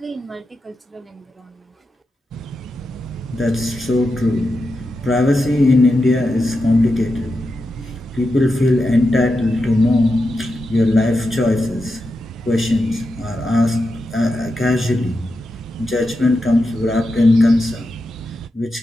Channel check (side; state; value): both; normal; correlation 0.88